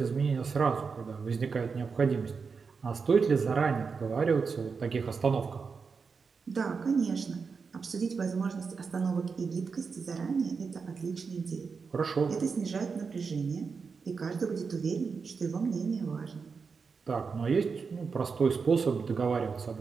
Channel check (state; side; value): quieter; left; 5.2 dB